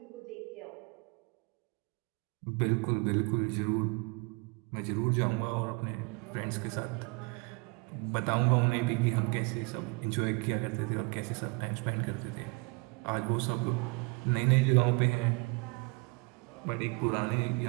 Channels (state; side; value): quieter; left; 30.4 dB